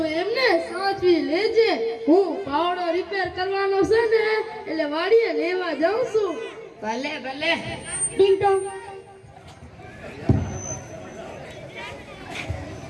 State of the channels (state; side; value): identical; both; correlation 1.00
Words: એમને સાચવી લેજે. હું પાવડો રિપેર કરવાનો છે ને એટલે વાડીએ લેવા જાઉં છું. ભલે ભલે. ટીંગ ટોંગ.